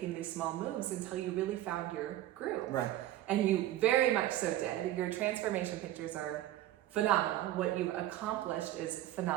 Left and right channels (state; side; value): quieter; left; 13.9 dB